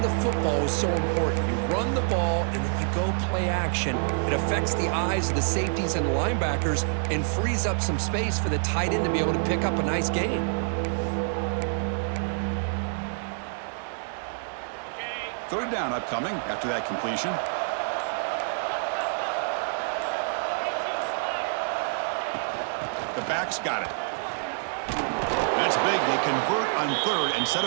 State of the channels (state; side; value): silent; left; digital silence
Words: football is so important. You run the ball, and then you go play action. It affects the eyes of the safeties and linebackers and frees up some space for the tight end to be able to pick up a nice gain. Third down upcoming after that completion. The back's got it. That's big. They convert on 3rd and set